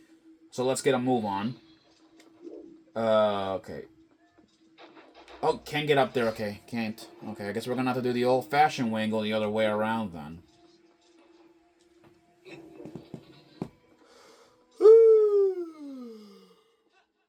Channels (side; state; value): both; identical; correlation 1.00